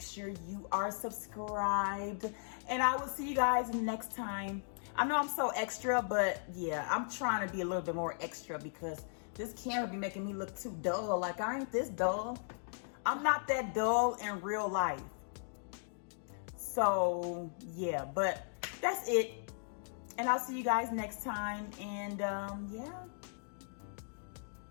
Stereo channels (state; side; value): silent; right; digital silence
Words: sure you are subscribed, and I will see you guys next time. I know I'm so extra, but yeah, I'm trying to be a little bit more extra because this camera be making me look too dull. Like, I ain't this dull. I'm not that dull in real life. So yeah, but that's it. And I'll see you guys next time. And yeah.